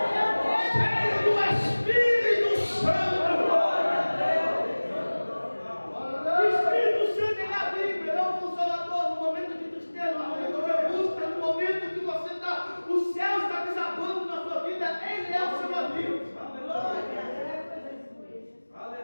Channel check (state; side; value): inverted; both; correlation -1.00